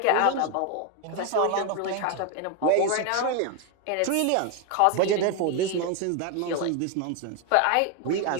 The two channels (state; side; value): different; both; correlation 0.01